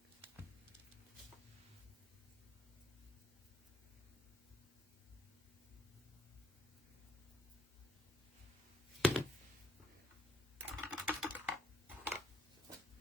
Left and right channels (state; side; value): normal; both; correlation 0.65